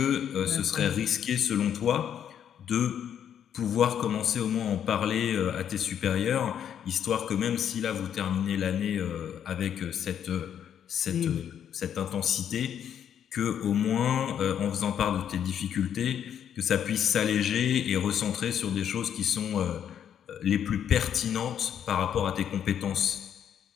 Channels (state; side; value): quieter; right; 9.1 dB